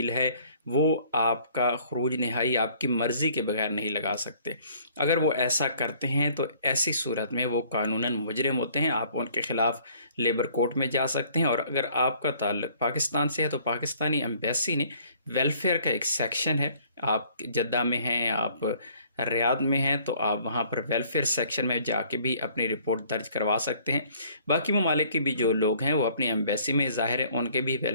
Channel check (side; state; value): both; inverted; correlation -0.58